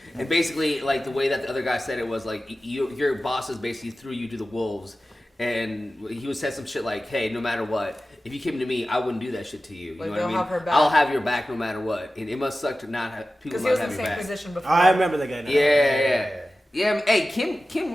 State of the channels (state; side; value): normal; both; correlation 0.95